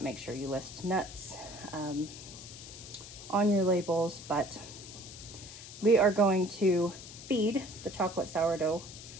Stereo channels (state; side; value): noise; left; hiss, 14 dB below the sound